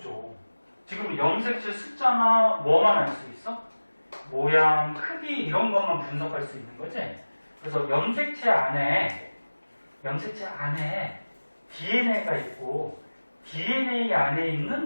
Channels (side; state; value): both; inverted; correlation -1.00